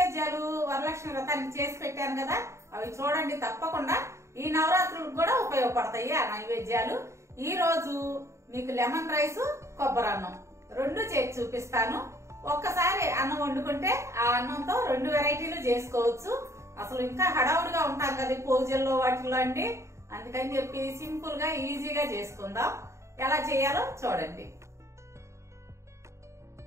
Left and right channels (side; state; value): left; late; 0.14 ms